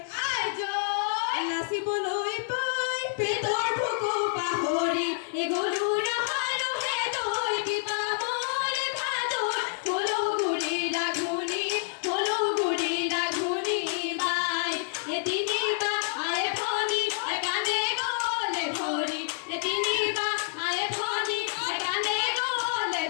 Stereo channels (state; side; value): silent; right; digital silence